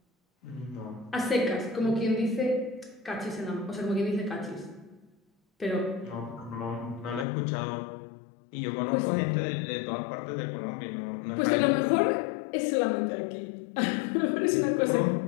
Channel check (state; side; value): drops out; right; at 7.2 s